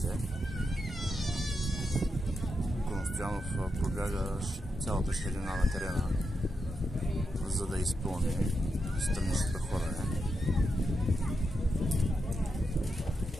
Коностоянов пробяга цялата ширина на терена, за да изпълни страничното хвърляне.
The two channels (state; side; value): normal; both; correlation 0.86